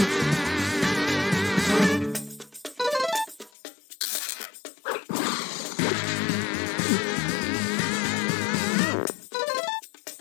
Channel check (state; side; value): drops out; right; at 3.5 s